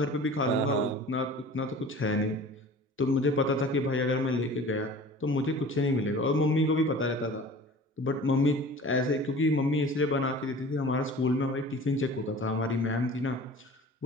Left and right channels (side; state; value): both; normal; correlation 0.42